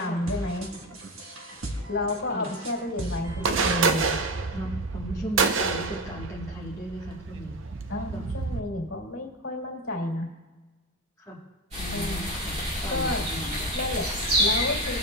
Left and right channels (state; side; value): normal; both; correlation 0.18